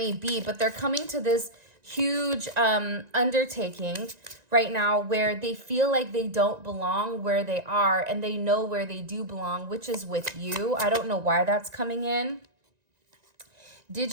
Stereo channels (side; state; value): left; late; 1.9 ms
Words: be. But they're coming to this huge undertaking right now where they feel like they don't belong where they are, and they know where they do belong, which is with you. I don't know why that's coming in. Did